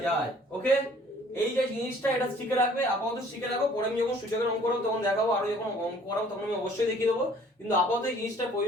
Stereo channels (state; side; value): normal; both; correlation 0.56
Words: যায়। ওকে, এই যে জিনিসটা এটা শিখে রাখবে, আপাতত শিখে রাখো, পরে আমি যখন সূচকের অঙ্ক করব তখন দেখাবো, আরো যখন অঙ্ক করাবো তখন আমি অবশ্যই দেখিয়ে দেবো, কিন্তু আপাতত এই জিনিসটা